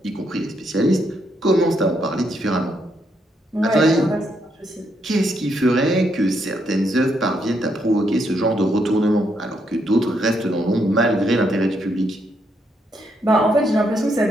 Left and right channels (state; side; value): normal; both; correlation 0.77